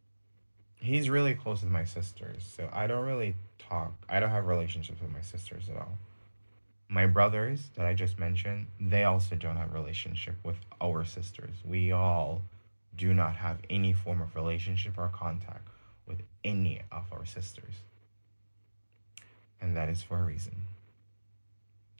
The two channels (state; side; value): inverted; both; correlation -1.00